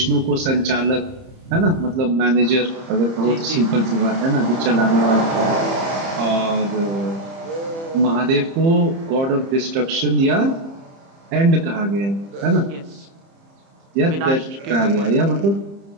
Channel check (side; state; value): left; late; 30 ms